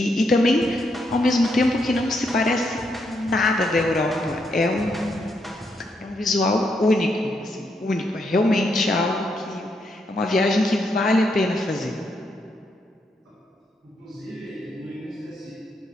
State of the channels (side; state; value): both; normal; correlation 0.78